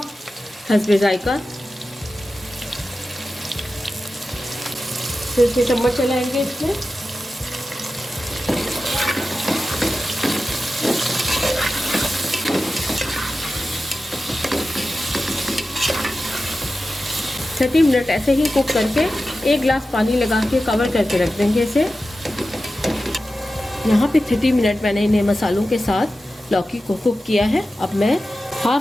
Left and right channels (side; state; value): both; normal; correlation 0.93